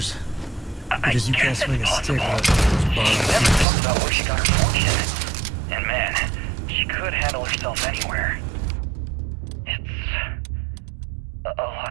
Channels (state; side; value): drops out; left; at 3.7 s